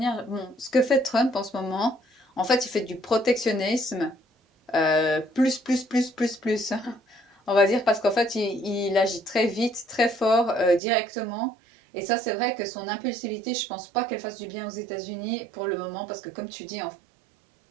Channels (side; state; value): left; drops out; at 10.8 s